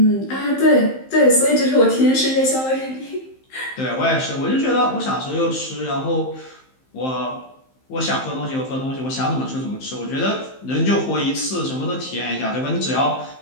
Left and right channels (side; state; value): right; late; 15 ms